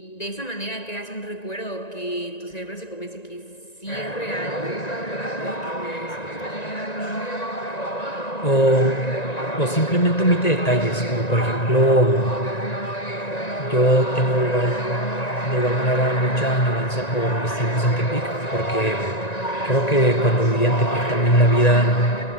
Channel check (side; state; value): right; late; 1.9 ms